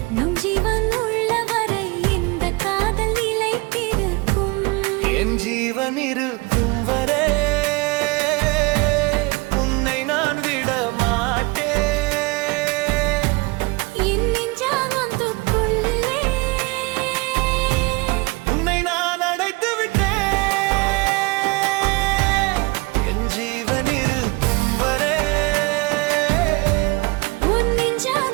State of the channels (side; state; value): left; quieter; 26.1 dB